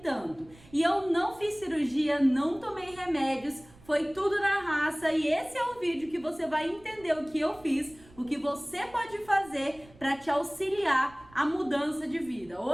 E eu não fiz cirurgia, não tomei remédios, foi tudo na raça, e esse é o vídeo que você vai entender o que eu fiz, o que você pode fazer para te auxiliar a mudança de vida.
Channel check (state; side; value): noise; right; rumble, 24 dB below the sound